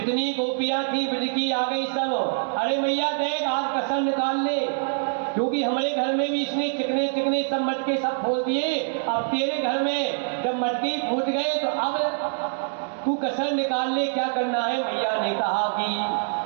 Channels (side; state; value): left; silent; digital silence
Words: गोपियां थी ब्रज की आ गई सब। अरे मैया देख आज कसम निकाल ले, क्योंकि हमारे घर में भी इसने चिकने चिकने सब मटके सब फोड़ दिए। अब तेरे घर में जब मटके फूट गए तो अब तू कसर निकाल ले, क्या करना है। मैया ने कहा कि